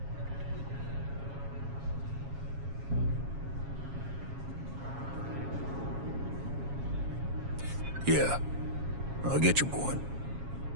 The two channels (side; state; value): left; late; 7.3 ms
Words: Yeah, I'll get your point.